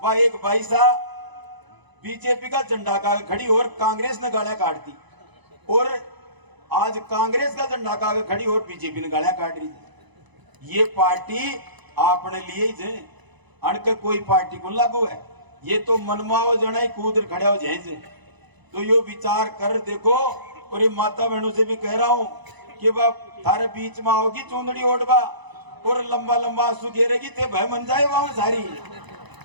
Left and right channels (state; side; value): late; left; 1.0 ms